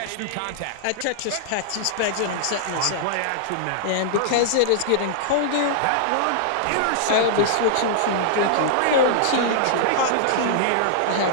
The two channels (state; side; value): different; both; correlation -0.01